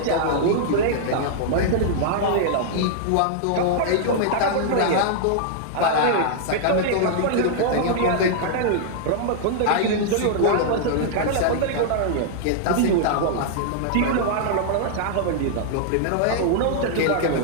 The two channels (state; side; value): different; both; correlation -0.01